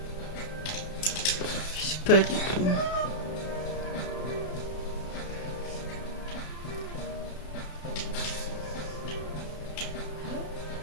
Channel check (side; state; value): right; late; 32 ms